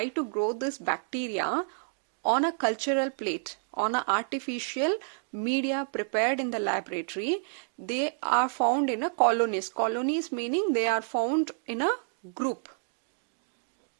to grow this bacteria on a cultural plate, on an artificial media prepared in the laboratory, they are found in a colonies. Colonies meaning they are found in a group.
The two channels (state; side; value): silent; left; digital silence